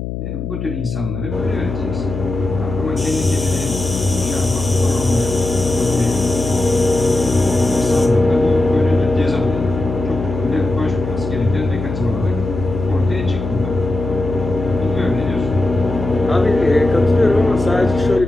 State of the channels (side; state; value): left; noise; hum, 6 dB below the sound